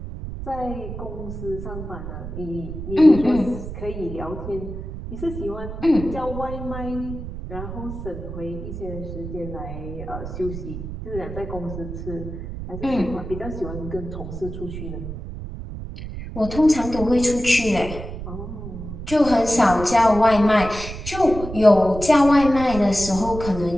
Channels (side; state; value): right; noise; rumble, 9 dB below the sound